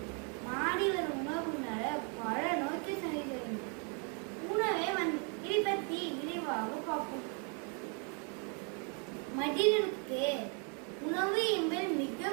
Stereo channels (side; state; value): left; quieter; 37.6 dB